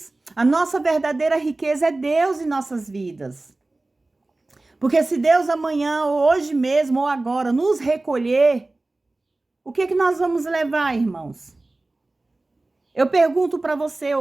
A nossa verdadeira riqueza é Deus em nossas vidas. Porque se Deus amanhã, ou hoje mesmo, ou agora, nos recolher, o que nós vamos levar, irmãos? Eu pergunto para você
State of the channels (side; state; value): left; quieter; 3.0 dB